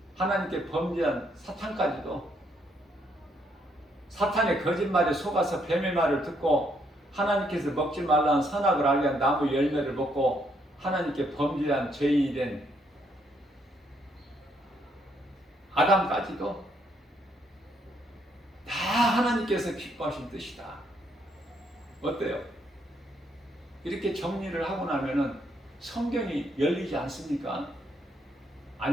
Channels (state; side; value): normal; both; correlation 0.73